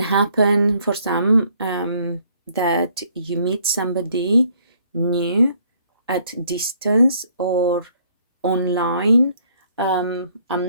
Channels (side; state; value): both; inverted; correlation -0.65